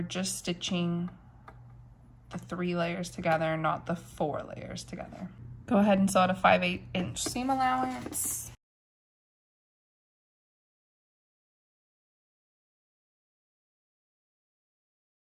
just stitching the 3 layers together, not the 4 layers together. Go ahead and sew at a 5/8 inch seam allowance.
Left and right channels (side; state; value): both; identical; correlation 1.00